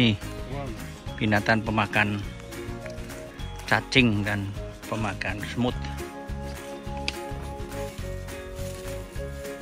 binatang pemakan cacing dan pemakan semut.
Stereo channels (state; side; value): identical; both; correlation 1.00